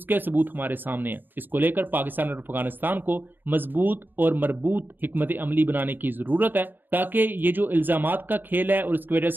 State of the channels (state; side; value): late; left; 0.092 ms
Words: کے ثبوت ہمارے سامنے ہیں۔ اس کو لے کر پاکستان اور افغانستان کو مضبوط اور مربوط حکمت عملی بنانے کی ضرورت ہے، تاکہ یہ جو الزامات کا کھیل ہے اور اس کی وجہ